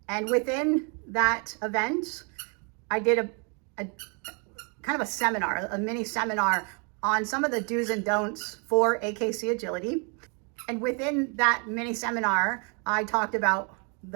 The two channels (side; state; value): left; quieter; 36.2 dB